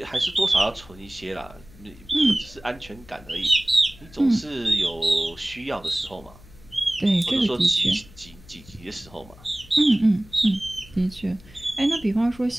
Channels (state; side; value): noise; left; hum, 22 dB below the sound